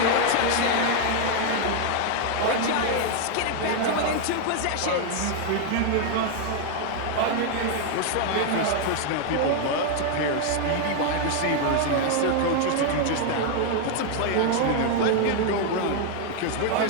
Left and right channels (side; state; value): both; different; correlation 0.00